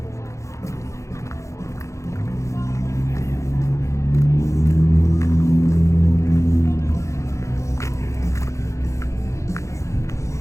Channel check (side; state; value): right; late; 0.15 ms